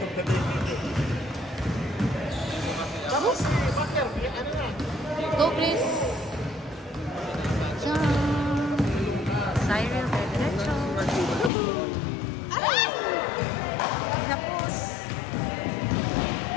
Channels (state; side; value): drops out; right; at 11.5 s